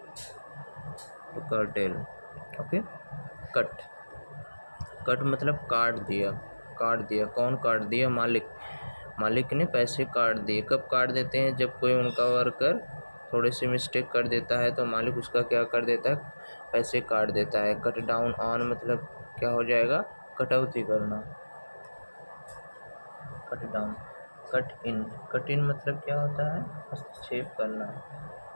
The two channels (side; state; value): both; inverted; correlation -1.00